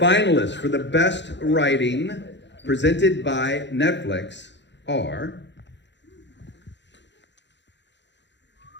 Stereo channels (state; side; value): late; right; 0.52 ms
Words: for the best writing presented by Netflix are...